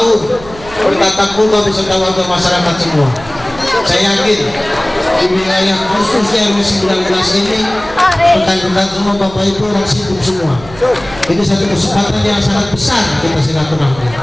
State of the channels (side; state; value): right; noise; hum, 18 dB below the sound